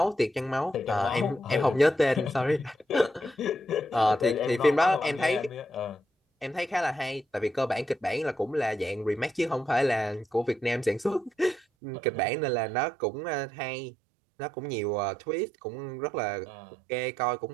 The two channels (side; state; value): left; drops out; at 11.7 s